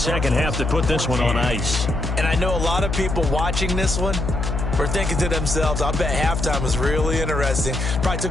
half to put this one on ice. And I know a lot of people watching this one were thinking to themselves, I bet halftime was really interesting. Probably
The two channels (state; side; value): noise; left; hum, 2 dB below the sound